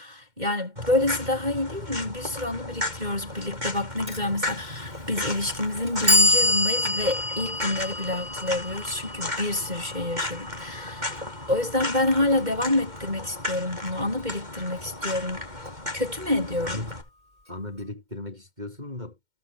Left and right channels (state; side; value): late; left; 2.1 ms